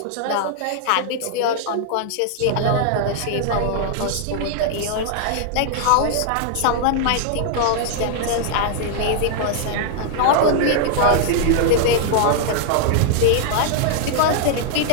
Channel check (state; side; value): different; both; correlation -0.01